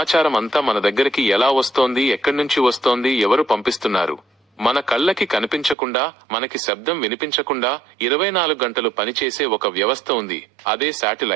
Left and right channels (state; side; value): drops out; left; at 5.8 s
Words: అంతా మన దగ్గరికి ఎలా వస్తోంది, ఎక్కడి నుంచి వస్తోంది, ఎవరు పంపిస్తున్నారు? మన కళ్ళకి కనిపించకుండా, మనకి శబ్దం వినిపించకుండా 24 గంటలు పనిచేసే ఒక వ్యవస్థ ఉంది, అదే